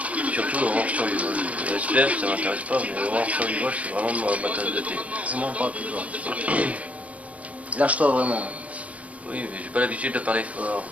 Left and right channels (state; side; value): late; left; 0.067 ms